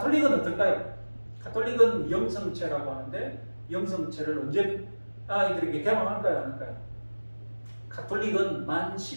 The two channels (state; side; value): inverted; both; correlation -1.00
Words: 어떨까요? 가톨릭은 영성체라고 하는데 영성체를 언제 아이들에게 개방할까요? 안 할까요? 가톨릭은 만